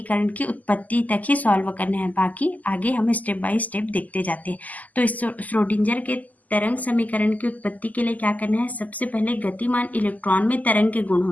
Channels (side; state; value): right; late; 0.079 ms